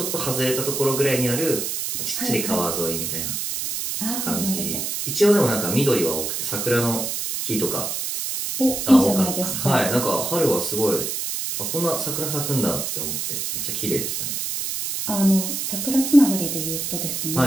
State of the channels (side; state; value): right; noise; hiss, 3 dB below the sound